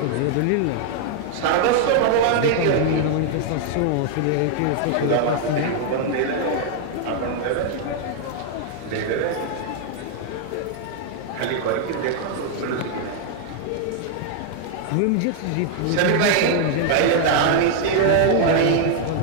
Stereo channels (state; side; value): different; both; correlation 0.00